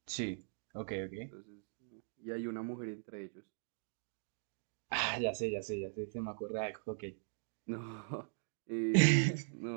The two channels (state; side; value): silent; left; digital silence